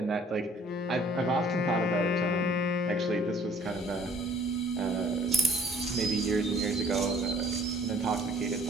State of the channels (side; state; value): both; normal; correlation 0.57